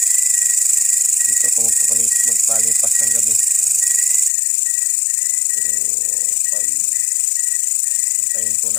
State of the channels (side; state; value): right; drops out; at 4.3 s